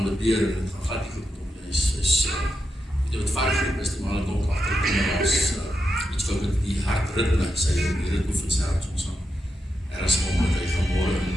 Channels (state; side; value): normal; both; correlation 0.86